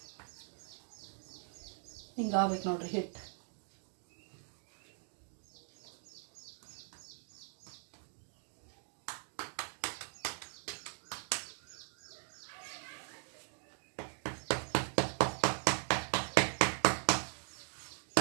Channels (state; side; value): silent; left; 51 dB below the other